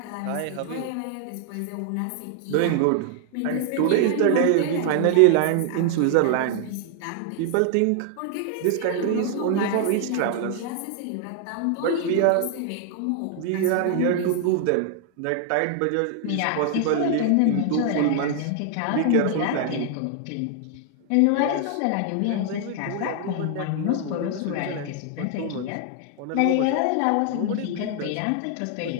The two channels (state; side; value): different; both; correlation 0.00